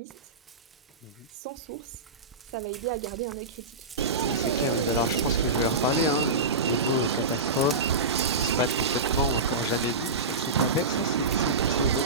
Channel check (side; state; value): left; quieter; 3.3 dB